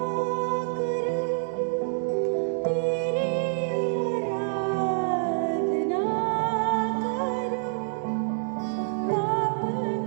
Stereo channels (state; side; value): silent; left; digital silence